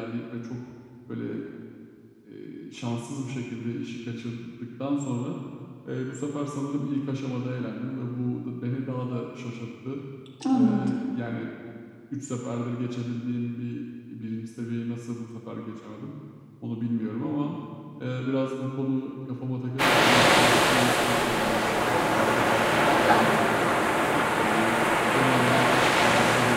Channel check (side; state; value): both; identical; correlation 1.00